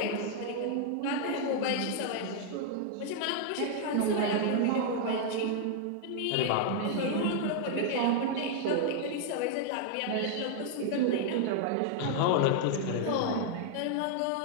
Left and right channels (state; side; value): different; both; correlation 0.00